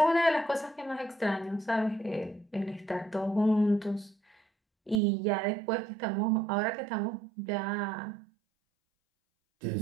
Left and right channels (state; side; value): drops out; left; at 5.0 s